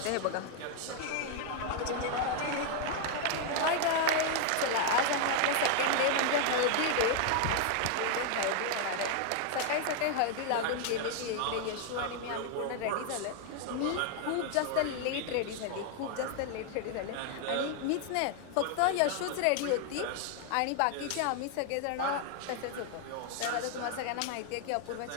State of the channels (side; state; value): both; different; correlation 0.00